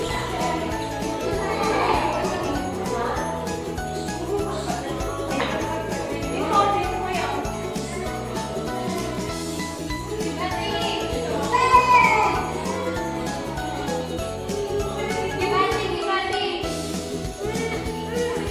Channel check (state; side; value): identical; both; correlation 1.00